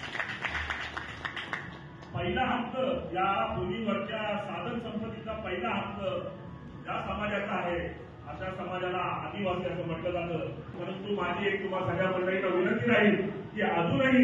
पहिला हक्क, या भूमीवरच्या साधन संपत्तीचा पहिला हक्क ज्या समाजाचा आहे अशा समाजाला आदिवासी असं म्हटलं जातं. परंतु माझी एक तुम्हा सगळ्या मंडळींना विनंती राहील की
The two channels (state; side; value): identical; both; correlation 1.00